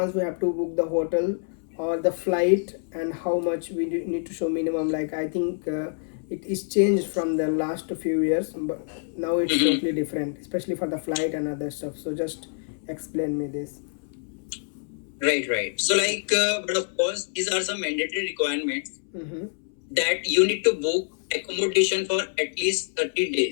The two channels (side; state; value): right; silent; 61 dB below the other